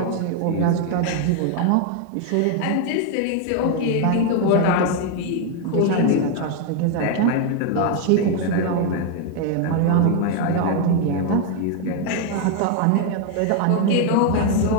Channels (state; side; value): different; both; correlation 0.01